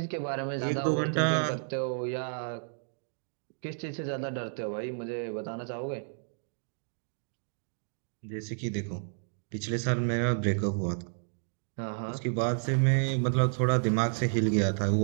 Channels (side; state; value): left; silent; digital silence